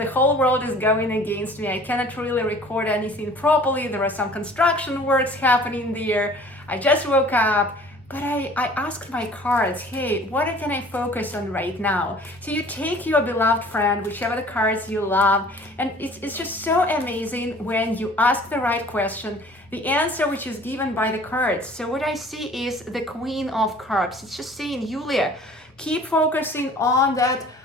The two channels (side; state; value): both; normal; correlation 0.49